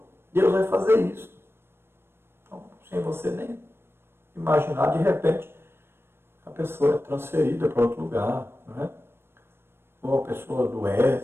Deus vai fazer isso. Então, sem você nem imaginar, de repente, a pessoa é transferida para outro lugar, não é? Ou a pessoa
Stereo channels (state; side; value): late; left; 0.12 ms